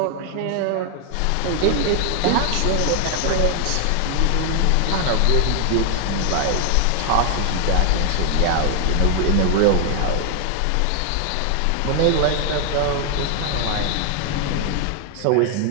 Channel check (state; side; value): different; both; correlation 0.00